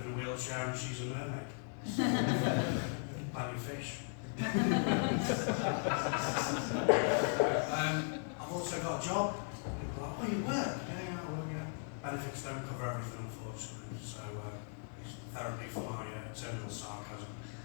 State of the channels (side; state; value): right; silent; 53 dB below the other